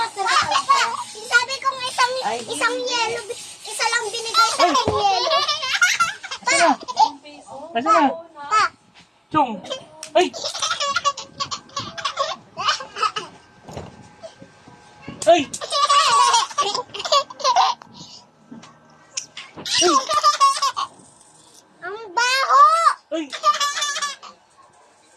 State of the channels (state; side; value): identical; both; correlation 1.00